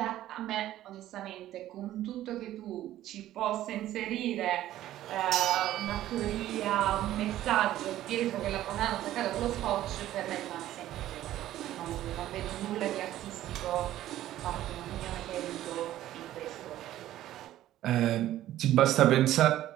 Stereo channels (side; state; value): left; quieter; 13.6 dB